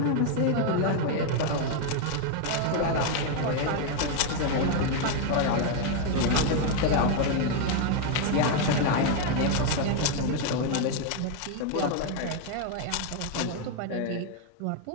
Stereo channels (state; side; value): different; both; correlation 0.01